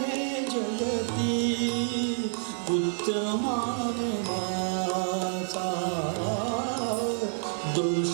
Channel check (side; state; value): left; silent; 59 dB below the other